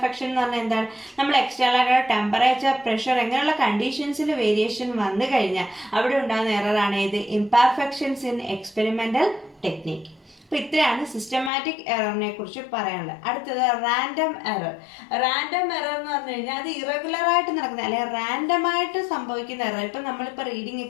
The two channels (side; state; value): right; drops out; at 11.5 s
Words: എന്ന് പറഞ്ഞാൽ എന്താണ്, നമ്മൾ എക്സ്റ്റേണൽ ആയിട്ടുള്ള ടെമ്പറേച്ചർ, പ്രഷർ അങ്ങനെയുള്ള കണ്ടീഷൻസിൽ വേരിയേഷൻ വന്നു കഴിഞ്ഞാൽ അവിടെ ഉണ്ടാകുന്ന എററാണ് ഇത് ഇംപെർഫെക്ഷൻസ് ഇൻ എക്സ്പെരിമെന്റൽ ടെക്നിക്. അപ്പോൾ ഇത്രയാണ് സിസ്റ്റമാറ്റിക് എററിനെ കുറിച്ച് പറയാനുള്ളത്. അടുത്തത് റാൻഡം എറർ. റാൻഡം എറർ എന്ന് പറഞ്ഞു കഴിഞ്ഞാൽ അത് ഇറഗുലർ ആയിട്ട് നടക്കുന്ന അല്ലെങ്കിൽ റാൻഡമായിട്ട് സംഭവിക്കുന്ന എറർ. ഇപ്പം നമ്മളിപ്പോൾ റീഡിംഗ്